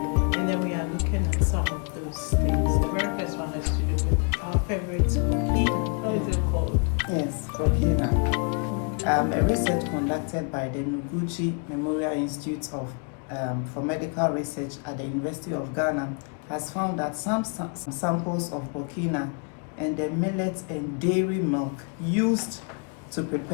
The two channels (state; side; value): quieter; right; 38.0 dB